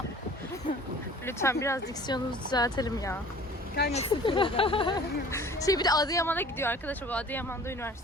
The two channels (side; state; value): both; normal; correlation 0.47